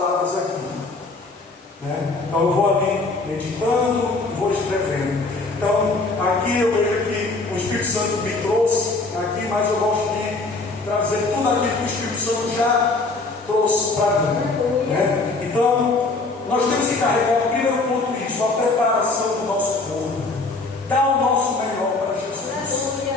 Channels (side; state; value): right; quieter; 3.5 dB